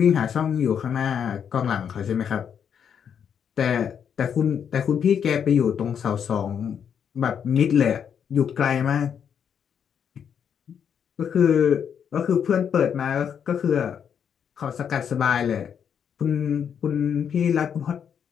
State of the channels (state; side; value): quieter; right; 7.9 dB